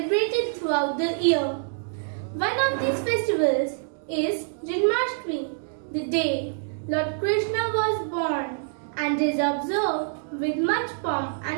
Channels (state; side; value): silent; left; digital silence